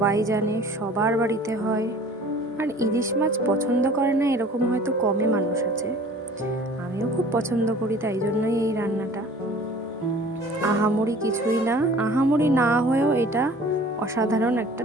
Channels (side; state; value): both; normal; correlation 0.48